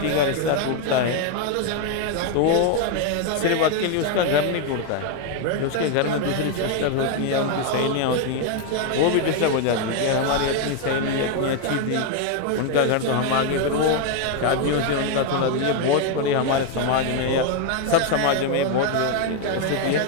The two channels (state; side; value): different; both; correlation 0.01